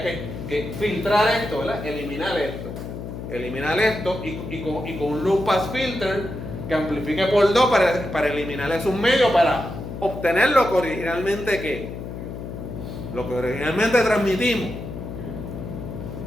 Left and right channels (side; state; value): left; noise; hum, 9 dB below the sound